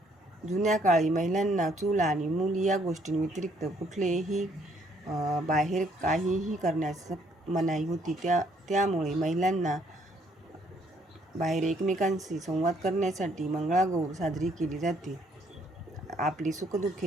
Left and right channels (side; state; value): both; normal; correlation 0.66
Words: जुन्या काळी महिलांना चूल आणि मूल या गोष्टींव्यतिरिक्त कुठलेही बाहेर काहीही करण्यास मनाई होती. त्यामुळे महिलांना बाहेर एकमेकांशी संवाद करण्यासाठी मंगळागौर साजरी केली जाते. आपली